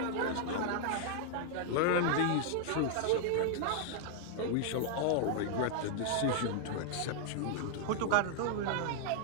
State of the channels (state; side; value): different; both; correlation 0.00